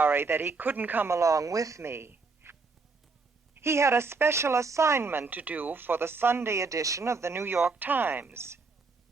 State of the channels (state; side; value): quieter; left; 4.3 dB